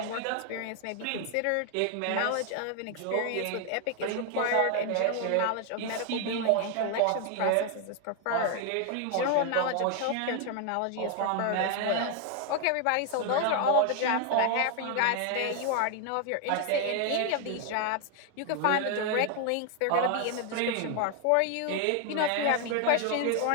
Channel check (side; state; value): both; different; correlation 0.00